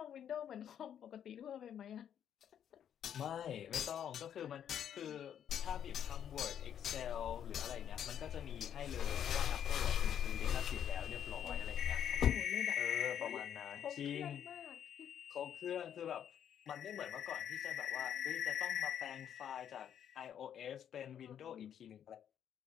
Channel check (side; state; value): right; quieter; 9.3 dB